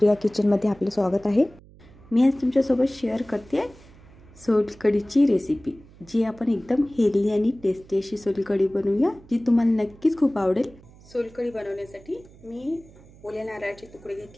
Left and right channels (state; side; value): noise; right; hum, 23 dB below the sound